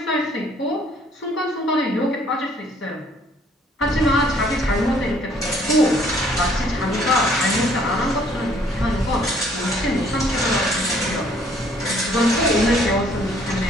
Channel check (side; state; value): both; normal; correlation 0.61